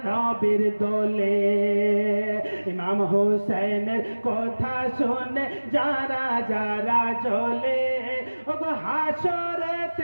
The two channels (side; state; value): both; inverted; correlation -1.00